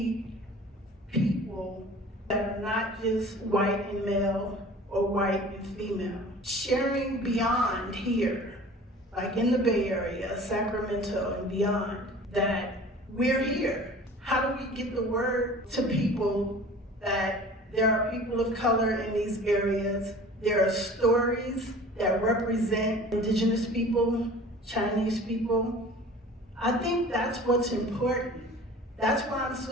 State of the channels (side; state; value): both; normal; correlation 0.44